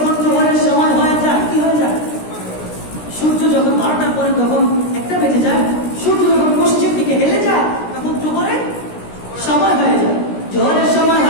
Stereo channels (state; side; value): late; right; 16 ms